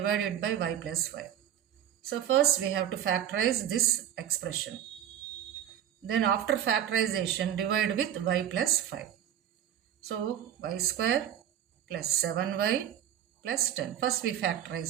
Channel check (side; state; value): left; quieter; 10.5 dB